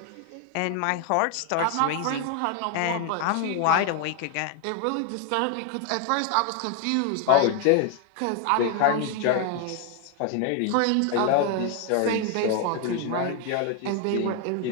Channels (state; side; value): different; both; correlation 0.01